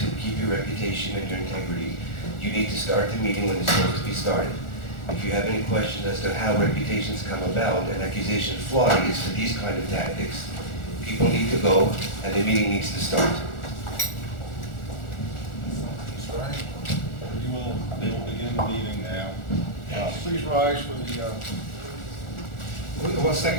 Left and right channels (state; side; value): late; right; 1.4 ms